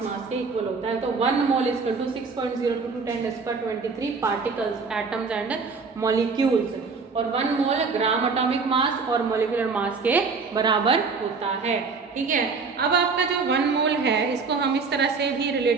मास के इक्वल होता है। तो 1 mole is equal to 6.022 10⁻23 particles, atoms and molecules, और 1 मोल ग्राम एटॉमिक मास और मॉलिक्यूलर मास के बराबर होता है। ठीक है, अब आपका जो 1 मोल है इसको हम इस तरह से भी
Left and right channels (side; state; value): left; quieter; 4.7 dB